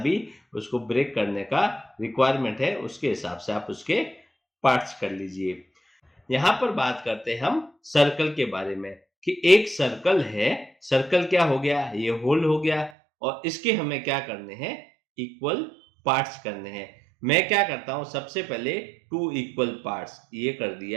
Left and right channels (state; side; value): drops out; left; at 12.9 s